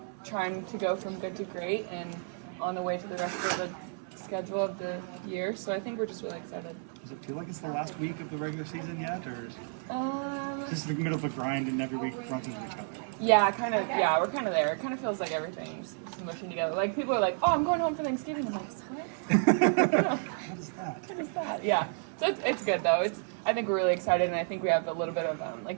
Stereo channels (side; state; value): left; silent; 57 dB below the other